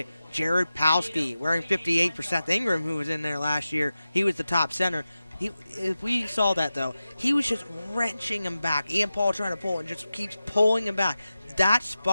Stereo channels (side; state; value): both; inverted; correlation -0.93